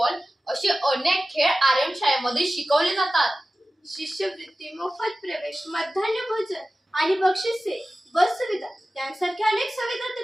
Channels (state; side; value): normal; both; correlation 0.95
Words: असे अनेक खेळ आर्यन शाळेमध्ये शिकवले जातात. शिष्यवृत्ती, मोफत प्रवेश, मध्यान्ह भोजन आणि बक्षिसे, बस सुविधा यांसारख्या अनेक सुविधा